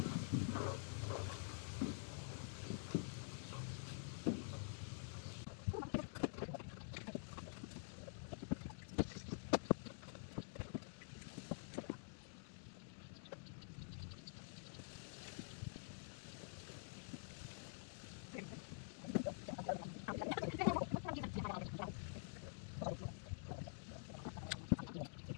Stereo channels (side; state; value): right; silent; digital silence